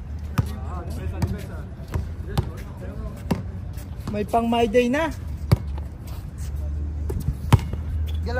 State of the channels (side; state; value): both; identical; correlation 1.00